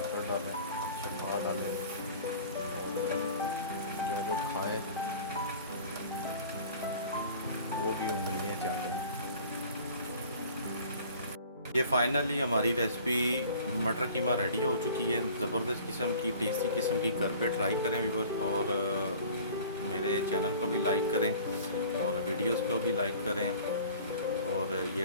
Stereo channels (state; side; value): inverted; both; correlation -0.46